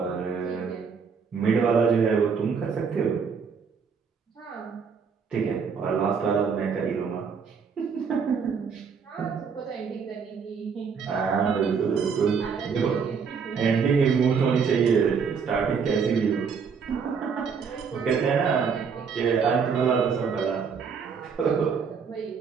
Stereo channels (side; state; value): left; quieter; 6.0 dB